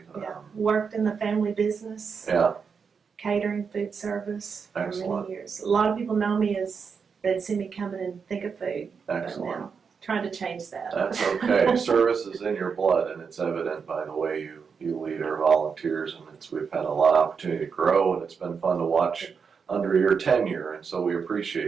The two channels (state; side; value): quieter; left; 5.9 dB